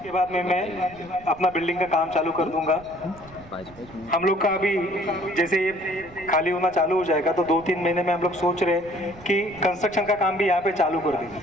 के बाद में मैं अपना बिल्डिंग का काम चालू कर दूंगा। हम लोग का अभी जैसे ये खाली होना चालू हो जाएगा, तो 2-3 महीने में हम लोग सोच रहे हैं कि कंस्ट्रक्शन का काम भी यहाँ पे चालू कर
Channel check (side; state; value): right; noise; rumble, 21 dB below the sound